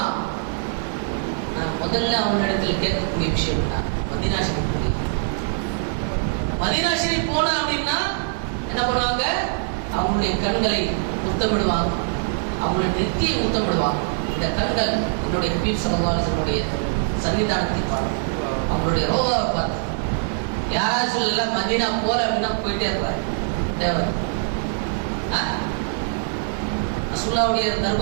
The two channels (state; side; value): silent; left; 63 dB below the other